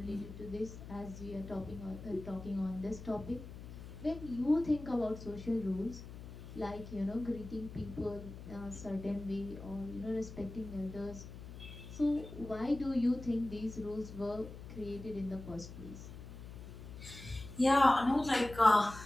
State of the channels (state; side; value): noise; left; hum, 12 dB below the sound